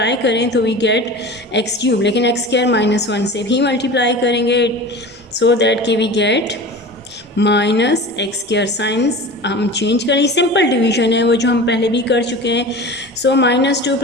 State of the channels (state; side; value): normal; both; correlation 0.35